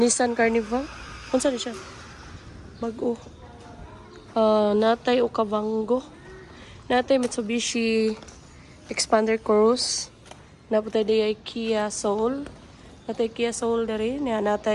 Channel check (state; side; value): identical; both; correlation 1.00